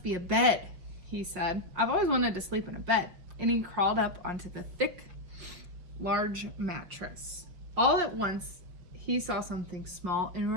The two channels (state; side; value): late; left; 5.8 ms